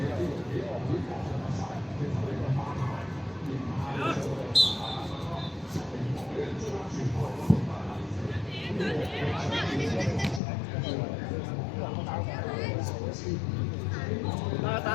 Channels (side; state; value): right; drops out; at 10.4 s